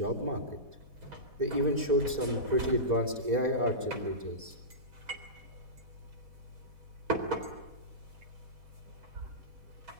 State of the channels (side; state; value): left; late; 4.1 ms